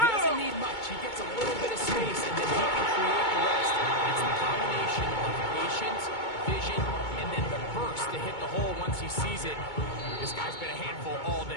doesn't need much. He gets a little bit of space, and then he can create the rest. It's the combination of patience, vision, and then the burst to hit the hole once he sees it. This guy's been a handful all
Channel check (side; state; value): right; late; 2.2 ms